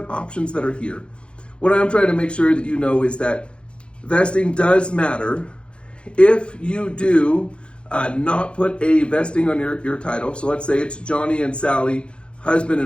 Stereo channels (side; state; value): right; late; 0.057 ms